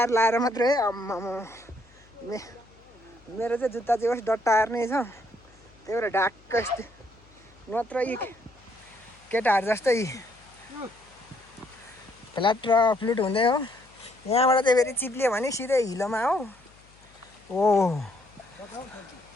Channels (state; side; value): noise; left; hum, 28 dB below the sound